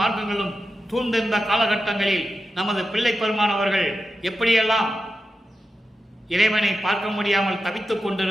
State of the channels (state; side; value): normal; both; correlation 0.90